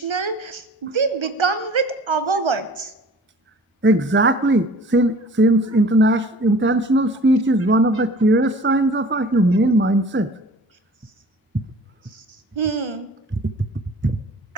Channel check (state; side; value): normal; both; correlation 0.46